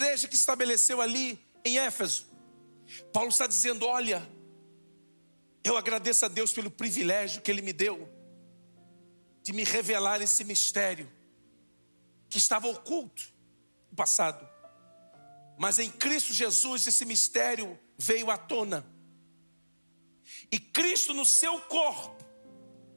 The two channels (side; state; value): both; inverted; correlation -1.00